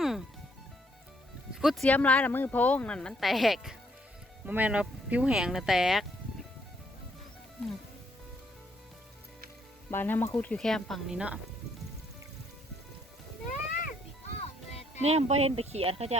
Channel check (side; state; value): both; normal; correlation 0.70